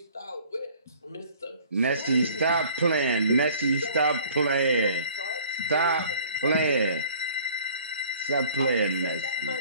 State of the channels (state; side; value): inverted; both; correlation -0.51